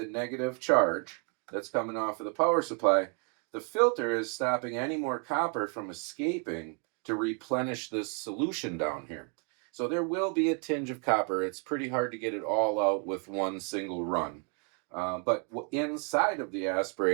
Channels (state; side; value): quieter; left; 37.6 dB